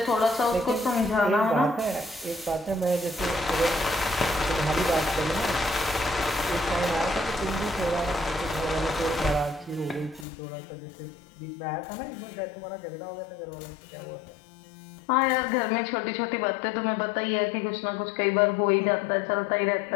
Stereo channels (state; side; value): drops out; right; at 10.2 s